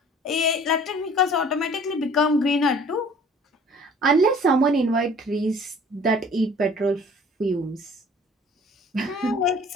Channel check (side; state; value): both; normal; correlation 0.50